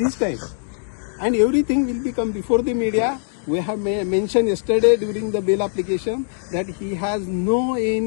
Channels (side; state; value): right; silent; digital silence